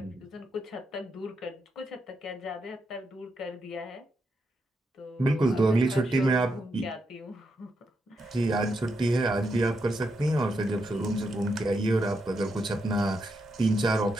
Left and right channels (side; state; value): both; normal; correlation 0.83